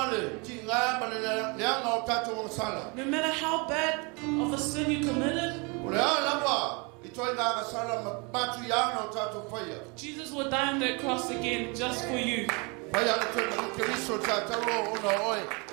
le ti ngā ma le leanga o tātou o sala. no matter how bad of a sin you committed, O le alawa i toi ngā sala matu i ana o tātou whaia. Jesus will die on that cross again just for you. Whaia le toi na ki riso tātauro o na oe.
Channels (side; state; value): left; quieter; 30.7 dB